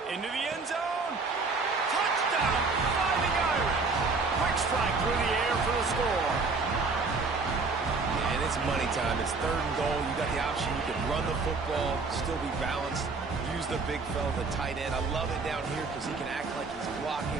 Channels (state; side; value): quieter; left; 4.2 dB